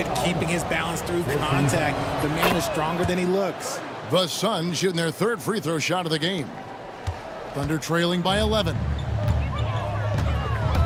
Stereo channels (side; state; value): both; identical; correlation 1.00